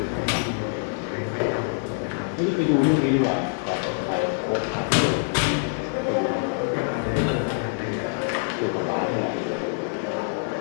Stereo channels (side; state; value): right; silent; 62 dB below the other